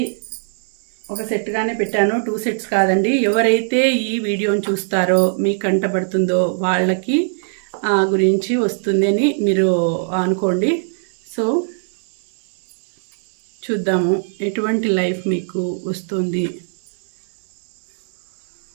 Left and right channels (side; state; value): left; silent; digital silence